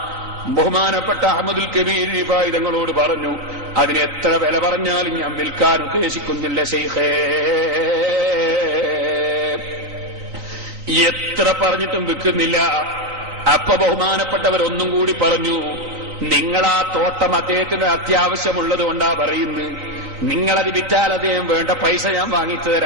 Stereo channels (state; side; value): late; left; 3.9 ms